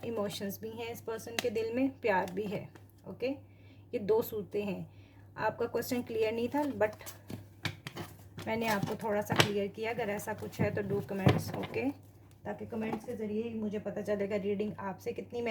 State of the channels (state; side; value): identical; both; correlation 1.00